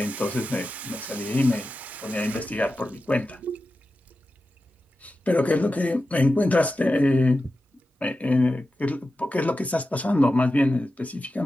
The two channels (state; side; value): normal; both; correlation 0.92